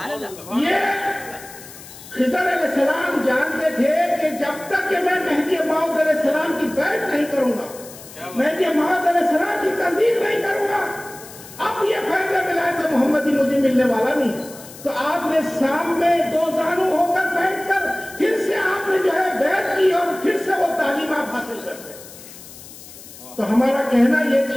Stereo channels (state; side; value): noise; left; hiss, 17 dB below the sound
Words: یہ خضر علیہ السلام جانتے تھے کہ جب تک کہ میں مہدی موعود علیہ السلام کی بیعت نہیں کروں گا، مہدی موعود علیہ السلام کی تصدیق نہیں کروں گا، اب یہ فیض ولایت محمدی مجھے ملنے والا نہیں۔ تو آپ نے سامنے 2 زانو ہو کر بیٹھ کر پھر سے آپ نے جو ہے بیعت کی اور پھر سے وہ تعلیم آپ حاصل کرتے۔ تو ہمارا کہنا یہ